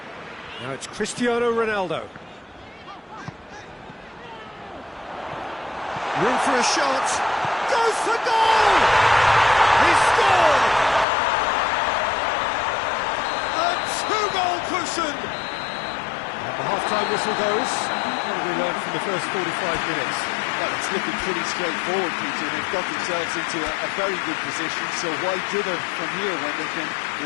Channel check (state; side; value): drops out; right; at 11.1 s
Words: Now it's Cristiano Ronaldo. Room for a shot. Goes for goal! He scored! A two-goal cushion! The half-time whistle goes. What have we learned from the first 45 minutes? Well, it's looking pretty straightforward, Peter. They've got themselves into a very good position, so why dither from here when they can